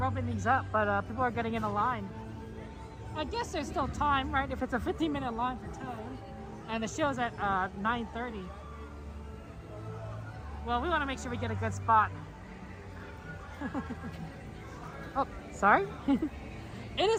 these up, but people are getting in a line. I guess there's still time, right? If it's a 15-minute line for time, and the show's at 9:30. Well, we want to make sure we get a good spot. Oh, sorry. It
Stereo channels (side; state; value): both; identical; correlation 1.00